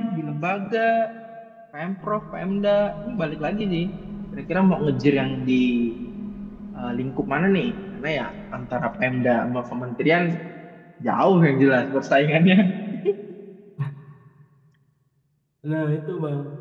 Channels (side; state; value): both; identical; correlation 1.00